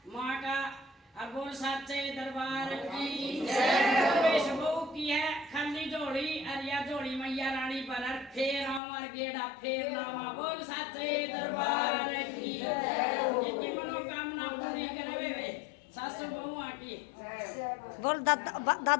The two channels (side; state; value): right; drops out; at 8.8 s